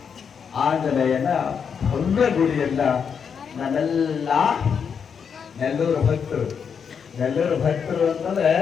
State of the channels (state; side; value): quieter; right; 6.8 dB